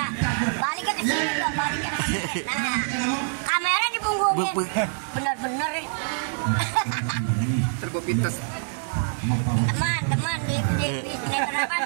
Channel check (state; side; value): silent; left; 59 dB below the other